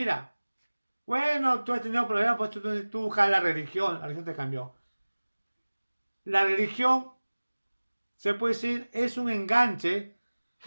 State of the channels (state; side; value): inverted; both; correlation -1.00